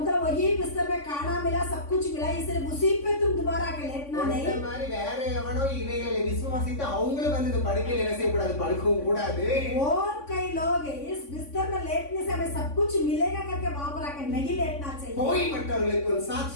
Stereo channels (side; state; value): right; late; 3.5 ms